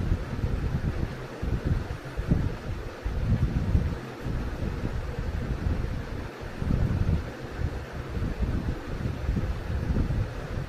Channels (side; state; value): both; identical; correlation 1.00